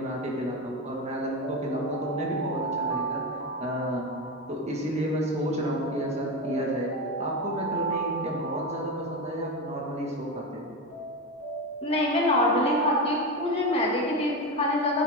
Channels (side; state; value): both; normal; correlation 0.17